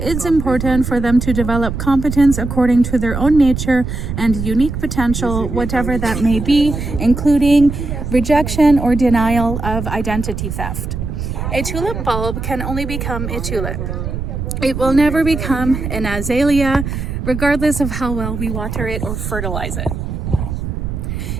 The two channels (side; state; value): right; noise; rumble, 5 dB below the sound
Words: important for them to develop competence according to their own nature and unique potential, whatever that may be, including rejection or denial of identity theft. A tulip bulb can only become a tulip. It will never become an azalea, regardless of how well we water it or fertilize it.